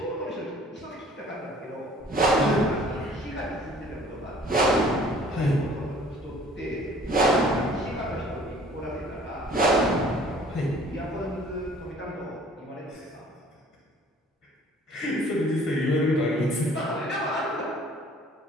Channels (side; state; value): both; normal; correlation 0.53